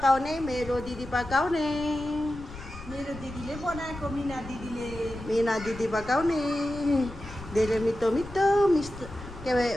ne, mero didi pakaw ne. मेरो दिदीले बनाएको मिना दिदीले Mina didi pakaw ne. Dere mito,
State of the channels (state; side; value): noise; left; rumble, 15 dB below the sound